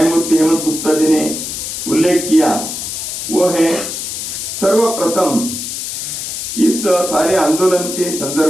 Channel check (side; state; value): left; noise; hiss, 5 dB below the sound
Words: हेमंत गुप्ता जी ने उल्लेख किया, वो है सर्वप्रथम इस सारे आंदोलन के